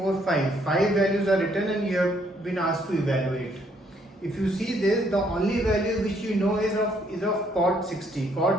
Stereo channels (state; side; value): normal; both; correlation 0.68